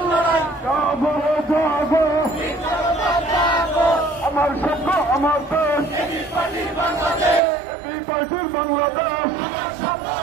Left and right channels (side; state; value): left; drops out; at 7.4 s